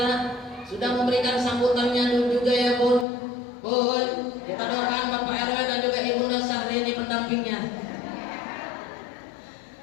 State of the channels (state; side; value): drops out; right; at 3.1 s